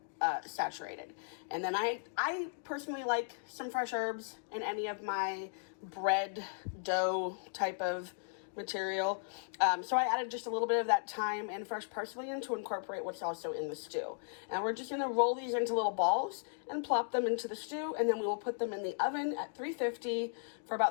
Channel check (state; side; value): silent; right; digital silence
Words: saturated. And then I personally like some fresh herbs in any of my bread dough type of material. So I added just a little bit of that thyme and fresh parsley in to incorporate what's also in the stew. And we're just gonna roll these into little balls and plop them into the stew, and then we will put them in the oven at 350 for